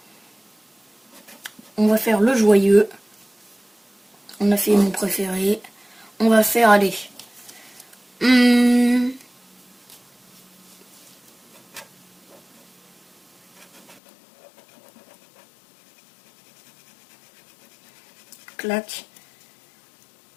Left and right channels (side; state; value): right; drops out; at 14.0 s